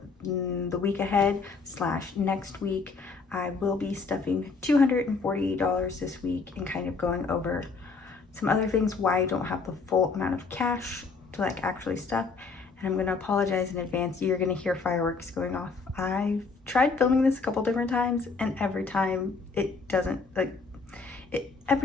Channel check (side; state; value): right; quieter; 4.5 dB